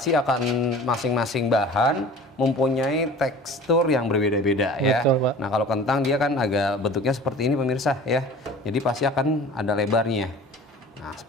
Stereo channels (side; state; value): both; normal; correlation 0.42